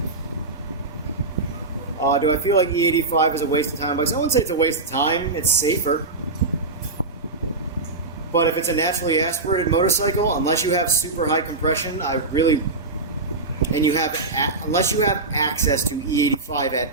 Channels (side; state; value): left; quieter; 3.5 dB